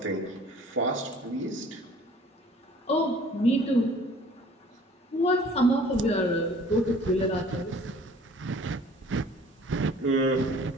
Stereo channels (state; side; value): normal; both; correlation 0.51